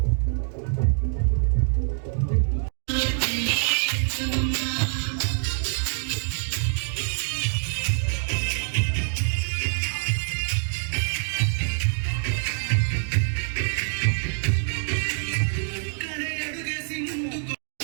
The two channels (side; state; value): left; silent; digital silence